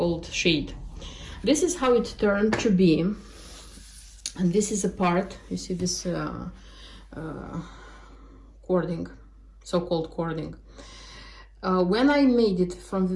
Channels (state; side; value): identical; both; correlation 1.00